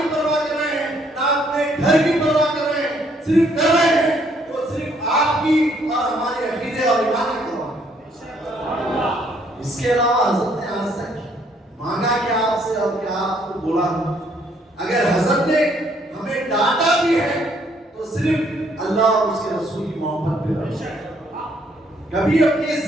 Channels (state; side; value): normal; both; correlation 0.67